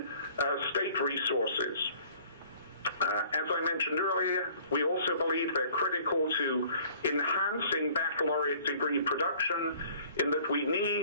state resources. As I mentioned earlier, we also believe they're critical to enhancing baccalaureate degree production, in that we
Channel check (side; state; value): both; inverted; correlation -0.53